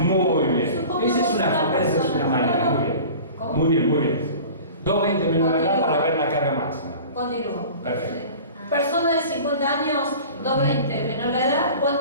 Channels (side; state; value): both; inverted; correlation -0.40